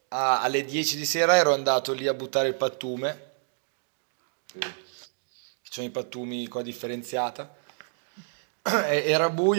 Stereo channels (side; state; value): left; silent; digital silence